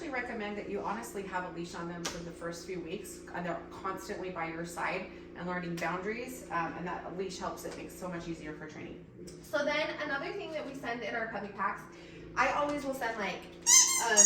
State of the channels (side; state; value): both; identical; correlation 1.00